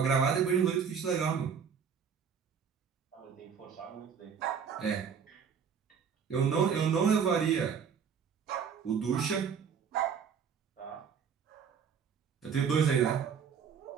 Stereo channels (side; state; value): left; quieter; 6.9 dB